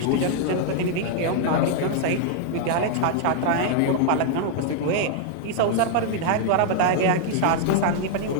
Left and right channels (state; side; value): different; both; correlation -0.01